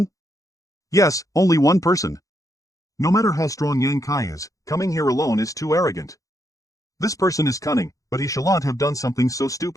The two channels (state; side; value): late; right; 0.16 ms